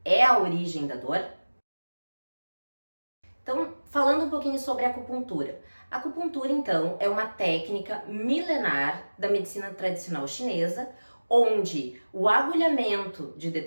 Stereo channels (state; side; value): inverted; both; correlation -1.00